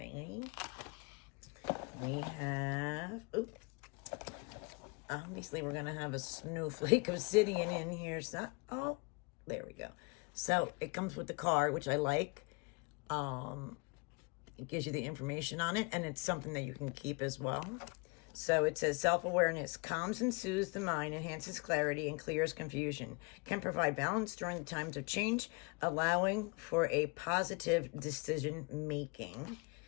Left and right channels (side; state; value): right; quieter; 30.1 dB